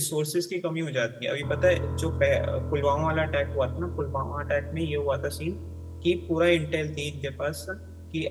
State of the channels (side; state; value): both; identical; correlation 1.00